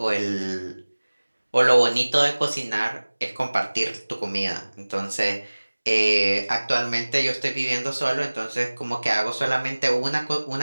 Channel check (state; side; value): inverted; both; correlation -1.00